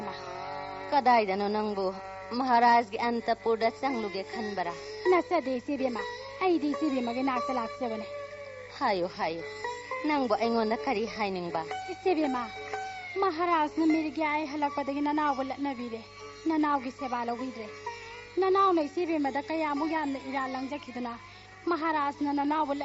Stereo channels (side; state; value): both; identical; correlation 1.00